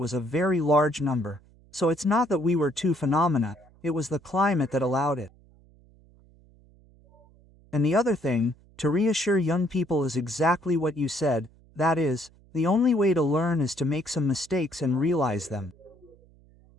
a very large number, so it's not that we were two phenomena, it was the climate that allowed it. And the other thing, to reassure young people, is exactly what you said, that is, the only way to learn is to make some mistakes and realize them.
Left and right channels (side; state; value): right; noise; hum, 28 dB below the sound